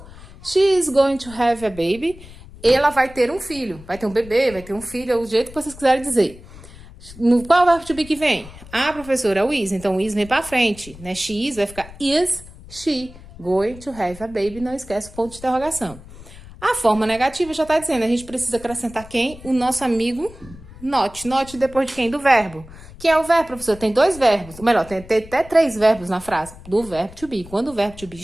She is going to have a baby. Ela vai ter um filho. Vai ter um bebê, vai ter um filho, é o jeito que vocês quiserem dizer. Qual é o verbo to be que vem? Ah, professora, é o is. Então, o is vem pra frente, né? She is vai ficar is she going to have a baby. Não esquece o ponto de interrogação. A forma negativa já tá dizendo. A gente precisa acrescentar quem? O nosso amigo not. Not depois de quem? Do verbo. Quem é o verbo, professor? Tem dois verbos. Ou melhor, tem até 3 verbos na frase. Do verbo to be. Quando o verbo to be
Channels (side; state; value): left; noise; rumble, 18 dB below the sound